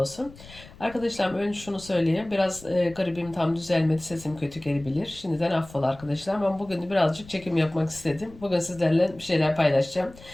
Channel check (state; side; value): noise; left; rumble, 20 dB below the sound